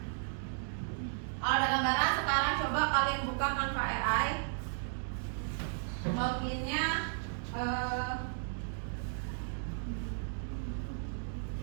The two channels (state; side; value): silent; left; digital silence